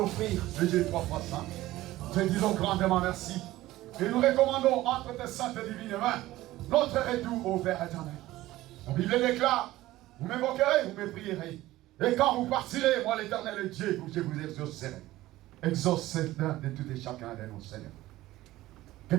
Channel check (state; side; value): quieter; left; 16.5 dB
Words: le Dieu trois fois saint? Te disons grandement merci. Et nous recommandons entre tes saintes et divines mains notre retour au Père éternel. La Bible déclare, vous m'évoquerez, vous me prierez. Et quand vous partirez, moi l'éternel Dieu, je vous exaucerai. Exauce l'un de tout et chacun de nous, Seigneur. Que